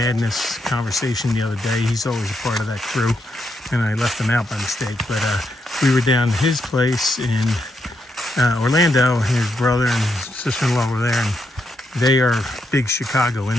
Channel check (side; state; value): both; normal; correlation 0.80